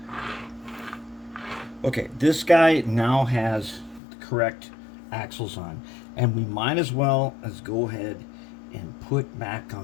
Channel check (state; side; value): drops out; right; at 4.0 s